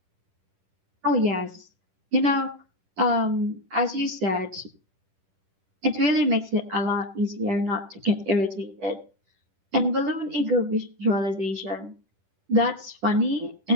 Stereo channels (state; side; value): late; left; 10 ms